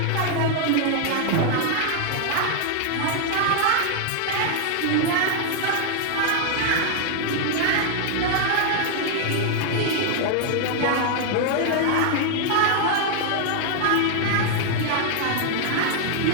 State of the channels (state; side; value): different; both; correlation 0.00